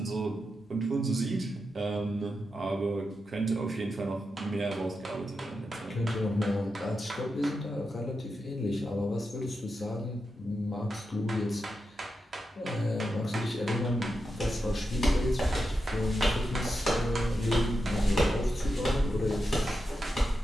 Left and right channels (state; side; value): normal; both; correlation 0.88